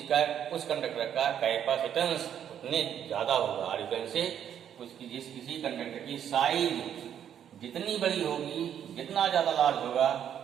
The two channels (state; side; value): quieter; left; 9.4 dB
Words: का, उस कंडक्टर का कैपेसिटेंस उतने ज्यादा होगा, और से उसकी किसी कंडक्टर की साइज जितनी बड़ी होगी, जितना ज्यादा लार्ज होगा,